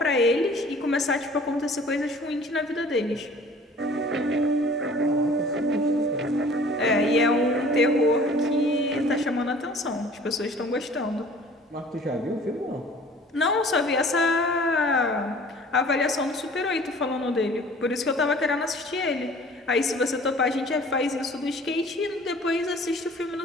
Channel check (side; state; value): both; normal; correlation 0.49